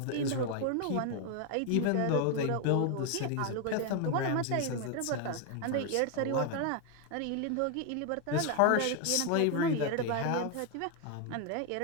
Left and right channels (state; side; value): different; both; correlation 0.01